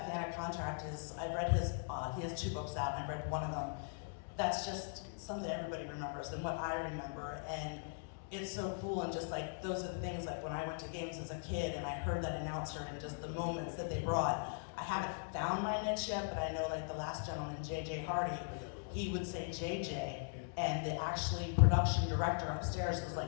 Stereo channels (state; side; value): silent; right; digital silence